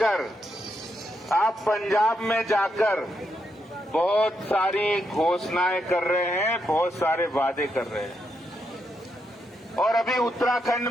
आप पंजाब में जाकर बहुत सारी घोषणाएं कर रहे हैं, बहुत सारे वादे कर रहे हैं। और अभी उत्तराखंड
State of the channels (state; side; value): normal; both; correlation 0.81